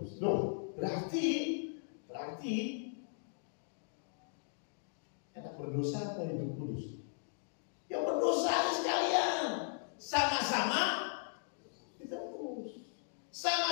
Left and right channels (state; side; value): silent; right; digital silence